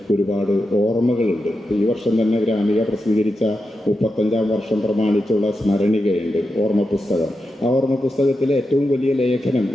ഒരുപാട് ഓർമ്മകളുണ്ട്. ഈ വർഷം തന്നെ ഗ്രാമിക പ്രസിദ്ധീകരിച്ച 35-ാം വർഷം പ്രമാണിച്ചുള്ള സ്മരണികയുണ്ട്, ഓർമ്മ പുസ്തകം. ആ ഓർമ്മ പുസ്തകത്തിലെ ഏറ്റവും വലിയ ലേഖനം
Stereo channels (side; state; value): both; normal; correlation 0.88